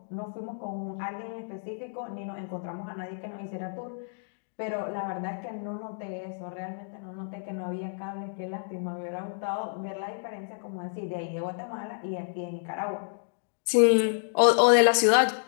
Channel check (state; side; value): silent; right; digital silence